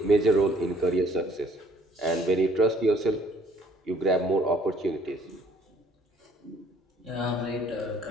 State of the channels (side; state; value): both; normal; correlation 0.60